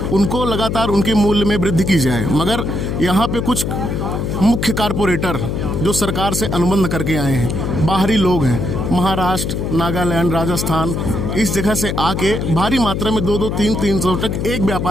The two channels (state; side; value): noise; left; hum, 2 dB below the sound